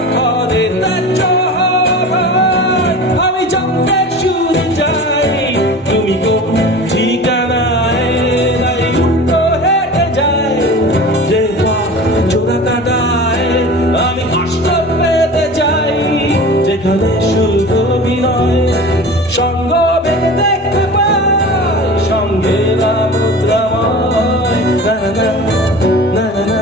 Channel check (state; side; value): normal; both; correlation 0.36